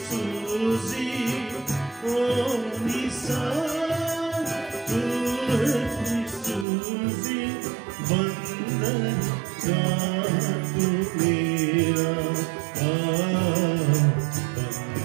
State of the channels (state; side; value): drops out; left; at 6.7 s